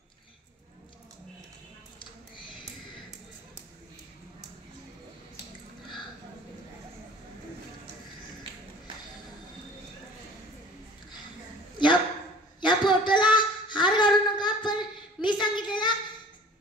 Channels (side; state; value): both; normal; correlation 0.46